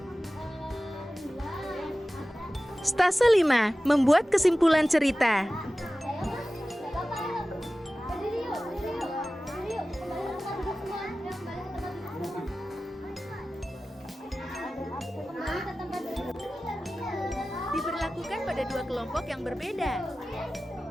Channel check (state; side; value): normal; both; correlation 0.96